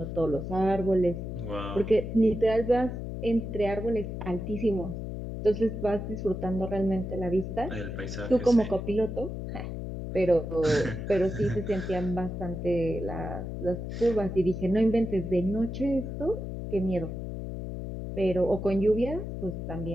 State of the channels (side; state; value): left; noise; hum, 6 dB below the sound